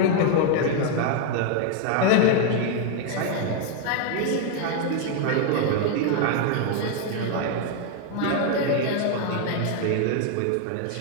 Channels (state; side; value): different; both; correlation 0.00